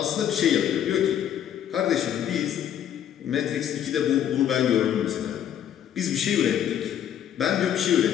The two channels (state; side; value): quieter; right; 10.0 dB